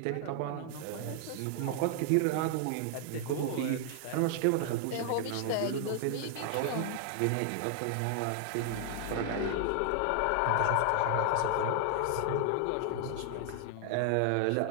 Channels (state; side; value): different; both; correlation 0.00